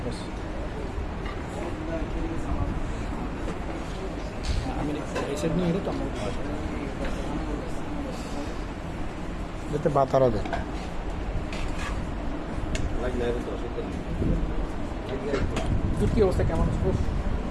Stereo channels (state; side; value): identical; both; correlation 1.00